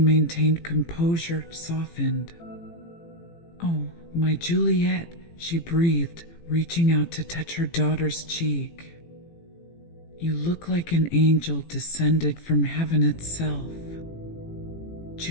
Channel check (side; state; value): right; late; 18 ms